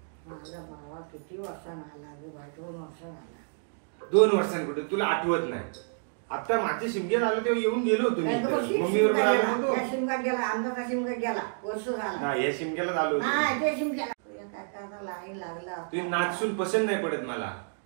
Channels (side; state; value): left; silent; digital silence